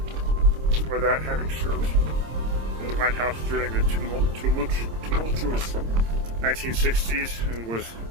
for that having served in the White House during the tumultuous 1960s, and was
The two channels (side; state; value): left; late; 26 ms